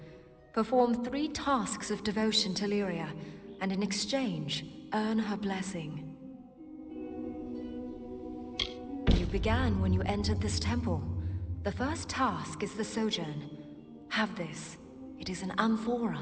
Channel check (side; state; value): both; identical; correlation 1.00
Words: Perform 3 tasks of devotion to Lyria, and in exchange, earn her blessing. You began when you entered this temple. The first task is the Sojourn. Have this. It is an